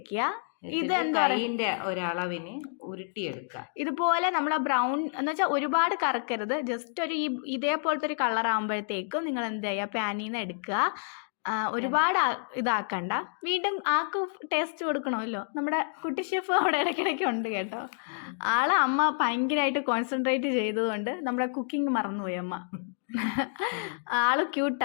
ഇത് കൈയിന്റെ ഒരളവിന് ഉരുട്ടിയെടുക്കുക. ഇതുപോലെ നമ്മൾ ബ്രൗൺ എന്ന് വെച്ചാൽ ഒരുപാട് കറക്കരുത്. ജസ്റ്റ് ഒരു ഇതേപോലത്തെ ഒരു കളർ ആകുമ്പോഴത്തേക്കും നിങ്ങൾ എന്ത് ചെയ്യുക, പാനിൽ നിന്ന് എടുക്കുക. ഒരുപാട് ഇതാക്കണ്ട. വീണ്ടും ആൾക്ക് ടേസ്റ്റ് കൊടുക്കണമല്ലോ. നമ്മുടെ കുട്ടി ഷെഫ് അവിടെ ഇടയ്ക്കിടയ്ക്ക് ഉണ്ട് കേട്ടോ. അമ്മ ഭയങ്കരമായിട്ട് കോൺസെൻട്രേറ്റ് ചെയ്തതുകൊണ്ട് നമ്മുടെ കുക്കിംഗ് മറന്നുപോയി അമ്മ. ആള്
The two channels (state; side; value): silent; right; digital silence